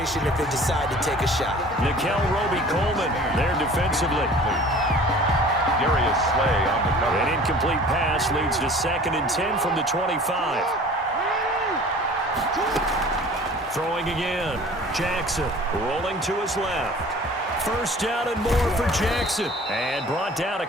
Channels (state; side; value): normal; both; correlation 0.46